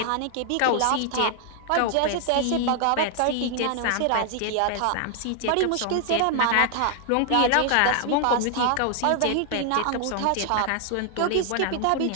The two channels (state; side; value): different; both; correlation 0.00